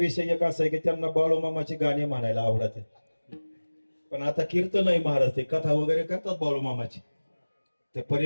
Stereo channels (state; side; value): inverted; both; correlation -1.00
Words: एक असा आहे की त्यांना बाळूमामाची गाणी म्हणायला आवडत आहेत, पण आता कीर्तन आहे महाराज, ते कथा वगैरे करतात बाळूमामाची. ते